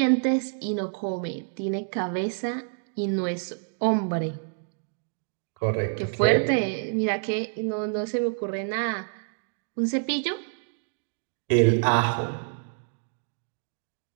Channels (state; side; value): silent; left; 60 dB below the other